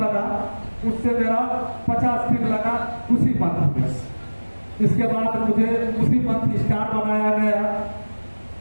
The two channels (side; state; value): both; inverted; correlation -1.00